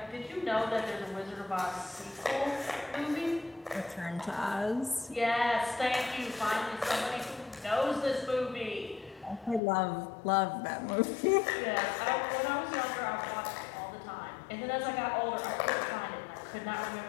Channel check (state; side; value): drops out; right; at 9.6 s